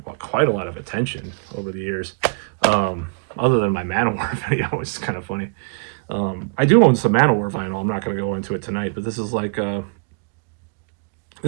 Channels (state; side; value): quieter; left; 33.7 dB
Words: quite a lot of attention over the years. Other than my Manowar video, which is kind of funny. I do own some Manowar vinyl. I'm not going to go into it tonight, but this is like an